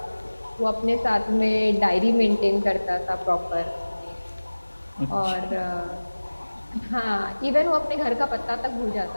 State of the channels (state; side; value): inverted; both; correlation -1.00